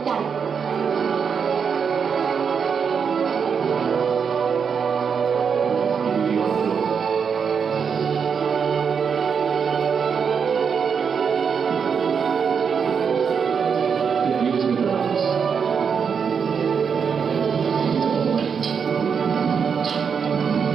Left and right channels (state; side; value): quieter; left; 6.5 dB